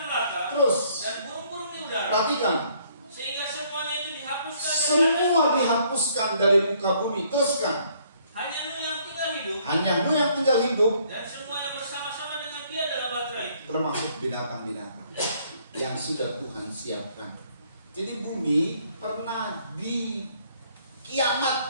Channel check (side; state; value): both; inverted; correlation -0.65